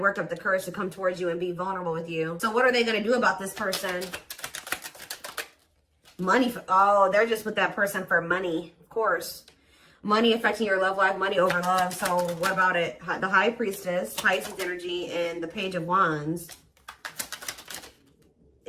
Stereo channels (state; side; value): identical; both; correlation 1.00